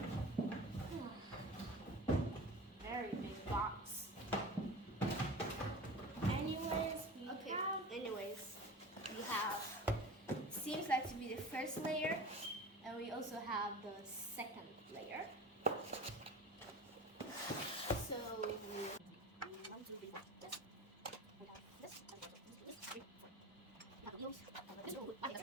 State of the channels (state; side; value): normal; both; correlation 0.35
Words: Very big box. Anyways, we have, seems like to be the first layer, and we also have the second layer. So we